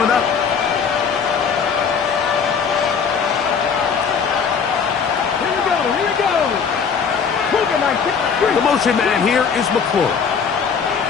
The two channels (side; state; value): right; quieter; 6.3 dB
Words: up. Here we go. The motion man here is McLaurin.